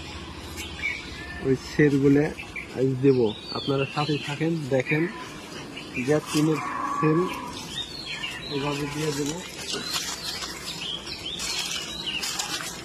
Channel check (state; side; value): identical; both; correlation 1.00